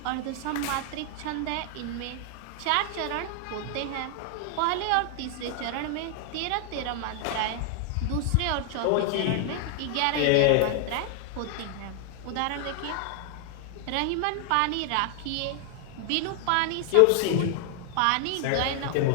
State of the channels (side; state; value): both; different; correlation 0.00